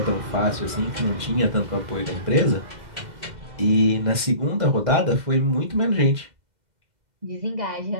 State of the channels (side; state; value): left; late; 2.1 ms